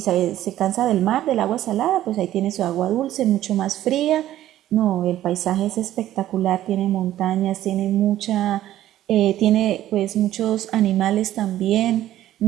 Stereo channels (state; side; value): quieter; left; 13.3 dB